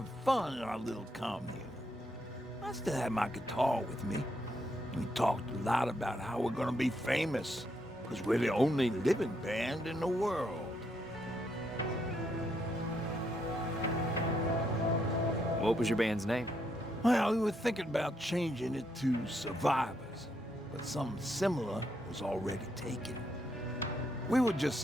fun in our little commune. I still had my guitar with me. We talked a lot about how we're gonna be famous, because we're the only living band in the world. What was your band's name? Well, we were thinking about changing it to Survivors, but something similar was already taken. We were just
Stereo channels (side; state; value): both; normal; correlation 0.77